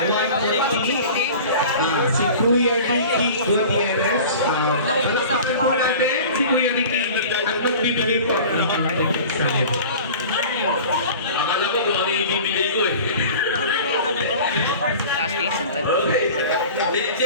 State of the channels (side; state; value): both; inverted; correlation -0.40